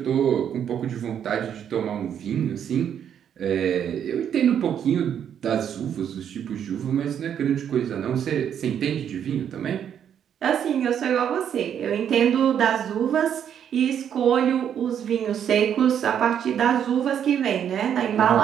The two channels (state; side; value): quieter; left; 8.9 dB